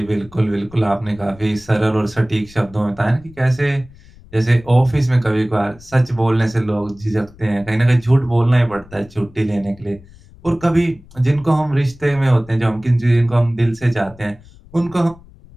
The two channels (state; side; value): noise; left; rumble, 23 dB below the sound